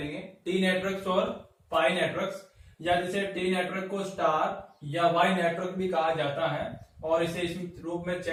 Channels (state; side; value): identical; both; correlation 1.00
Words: टी नेटवर्क्स और पाई नेटवर्क्स, या जिसे टी नेटवर्क को स्टार या वाई नेटवर्क भी कहा जाता है और इसे इस रूप में